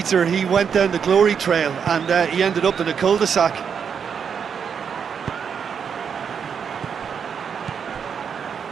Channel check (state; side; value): quieter; left; 7.0 dB